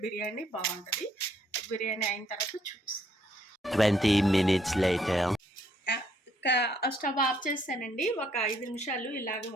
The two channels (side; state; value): both; normal; correlation 0.69